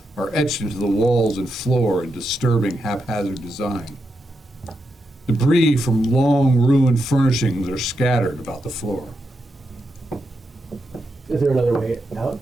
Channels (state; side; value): normal; both; correlation 0.85